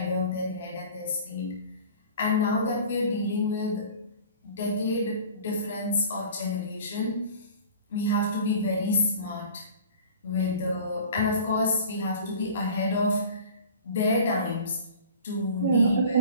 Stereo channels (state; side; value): inverted; both; correlation -0.43